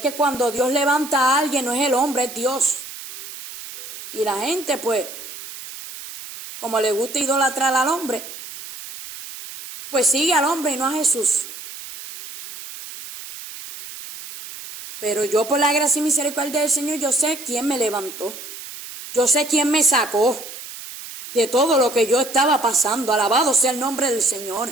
cuando Dios levanta a alguien no es el hombre, es Dios. Y la gente, pues, como le gusta idolatrar al hombre, pues sigue al hombre y no a Jesús. Pero yo, por la gracia y misericordia del Señor, yo sé quién me levantó. Yo sé quién me sacó de todo lo que yo estaba pasando. Alabado sea el nombre del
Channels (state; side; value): noise; right; hiss, 12 dB below the sound